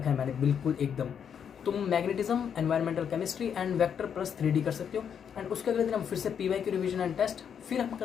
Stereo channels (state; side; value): quieter; right; 7.8 dB